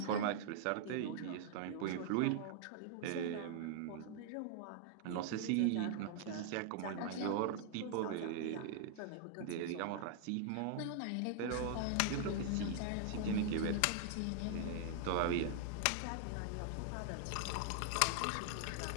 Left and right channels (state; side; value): different; both; correlation -0.01